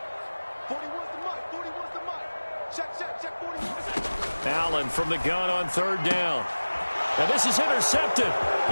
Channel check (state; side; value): inverted; both; correlation -1.00